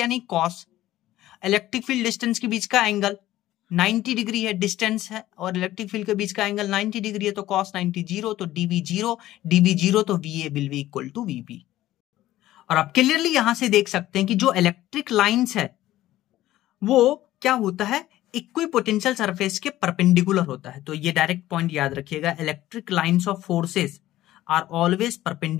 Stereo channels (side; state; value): right; quieter; 14.8 dB